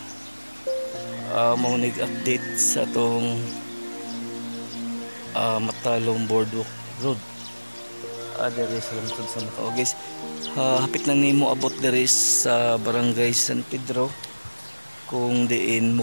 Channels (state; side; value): inverted; both; correlation -1.00